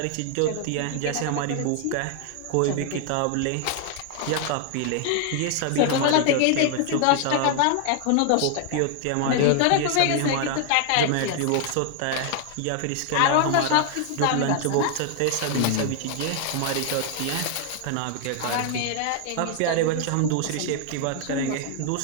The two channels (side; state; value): both; different; correlation 0.00